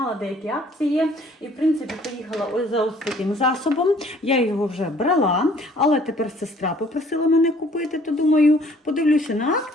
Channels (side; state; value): both; normal; correlation 0.58